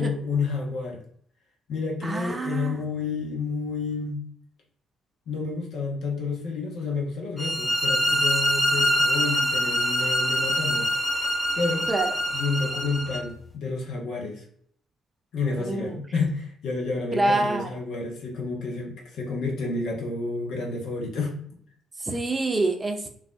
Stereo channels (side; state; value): both; normal; correlation 0.77